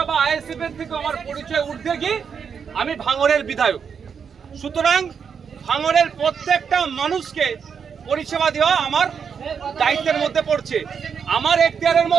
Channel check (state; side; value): quieter; left; 6.7 dB